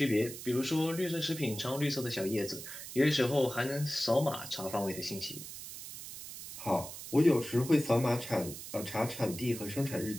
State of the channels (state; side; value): noise; right; hiss, 11 dB below the sound